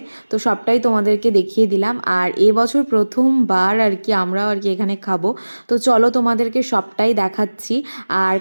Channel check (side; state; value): both; inverted; correlation -1.00